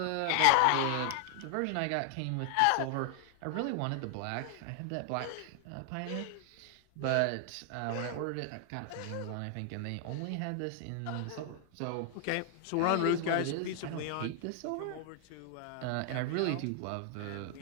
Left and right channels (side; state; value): both; different; correlation 0.00